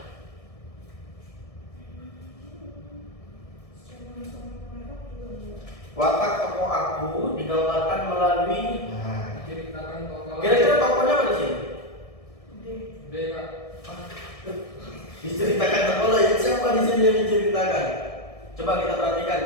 Watak tokoh aku digambarkan melalui. Nah, Ceritakan tokoh. kira-kira tokohnya apa di sini? D kak. Diceritakan tokoh lain. Siapa di sini yang diceritakan? Coba kita perhatikan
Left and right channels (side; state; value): right; late; 1.7 ms